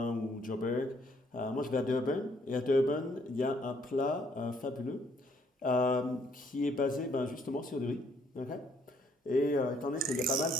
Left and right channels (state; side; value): normal; both; correlation 0.67